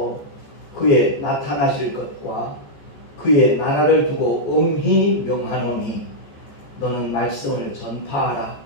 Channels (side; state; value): right; late; 14 ms